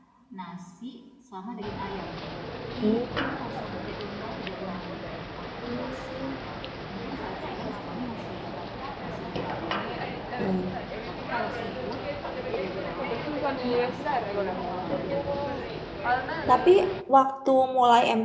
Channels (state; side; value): identical; both; correlation 1.00